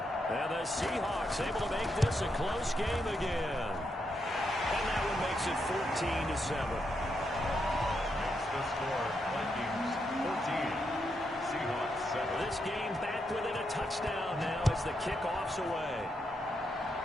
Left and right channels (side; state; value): both; normal; correlation 0.81